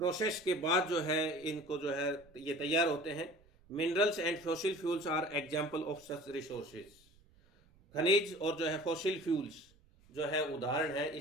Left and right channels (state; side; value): noise; right; rumble, 29 dB below the sound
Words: के बाद जो है इनको जो है ये तैयार होते हैं। Minerals and fossil fuels are example of such resources, खनिज और जो है फॉसिल फ्यूल्स जो है उदाहरण है